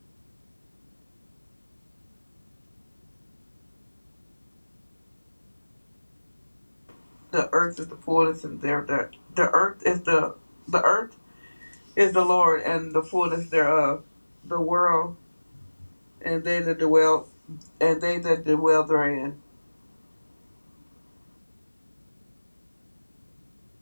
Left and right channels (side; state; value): both; inverted; correlation -1.00